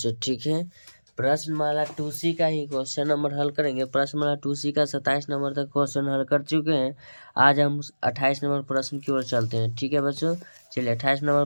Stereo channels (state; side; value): inverted; both; correlation -1.00